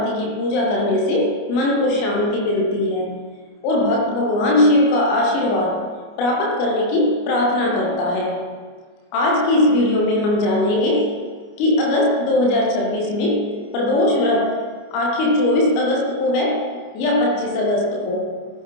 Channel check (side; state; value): right; late; 29 ms